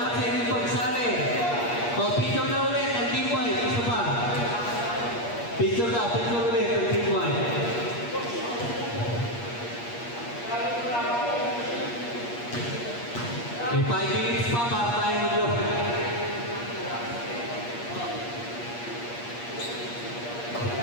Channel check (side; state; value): right; late; 8.5 ms